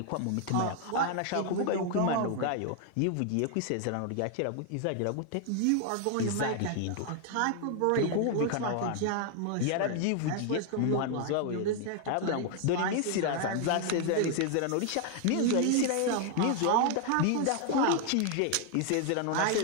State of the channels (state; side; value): different; both; correlation 0.00